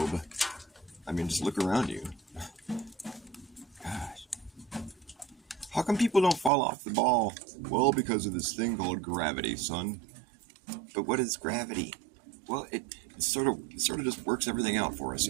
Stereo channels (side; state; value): left; drops out; at 6.5 s